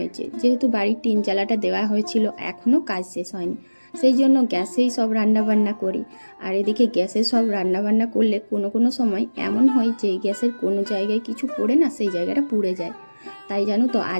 যেহেতু বাড়ির টিন চালাটা দেওয়া হয়েছিল এখনও কাজ শেষ হয়নি, সেই জন্য গ্যাসেই সব রান্নাবান্না করি। আর এদিকে গ্যাসে সব রান্নাবান্না করলে কোনো সময় এমন হয় যে গ্যাসের কোনো জায়গায় কিছু পড়ে না সেই জায়গাটা পুড়ে যায়। তাই জানো তো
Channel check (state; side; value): inverted; both; correlation -1.00